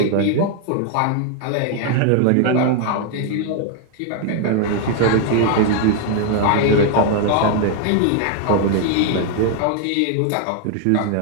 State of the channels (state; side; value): different; both; correlation 0.00